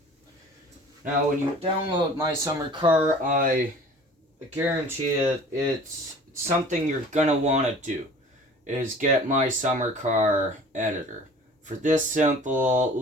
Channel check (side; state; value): both; normal; correlation 0.45